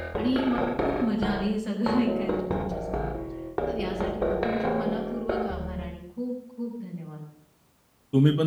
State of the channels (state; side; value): identical; both; correlation 1.00